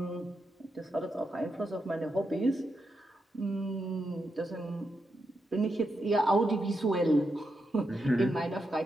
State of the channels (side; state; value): both; normal; correlation 0.85